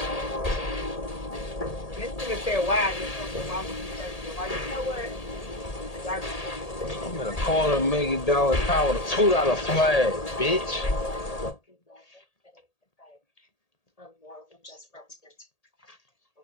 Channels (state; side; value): late; right; 1.8 ms